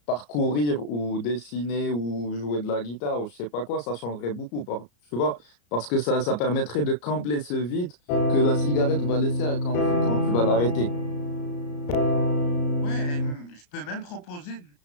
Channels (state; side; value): late; right; 34 ms